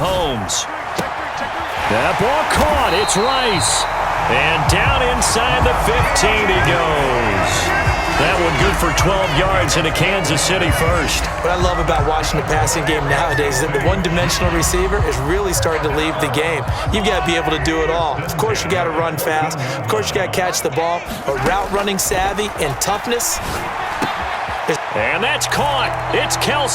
That ball caught. It's Rice. And down inside the 15 he goes. That one good for 12 yards into Kansas City first. What I love about watching the passing game nowadays is that the one-dimensional receiver is really starting to leave the game. You've got to be able to do it all. Of course, you got to run fast. Of course, you got to catch the ball. But route running savvy and toughness. And that's caught. It's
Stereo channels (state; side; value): identical; both; correlation 1.00